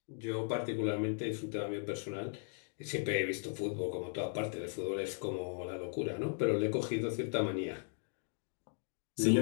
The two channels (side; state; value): right; silent; digital silence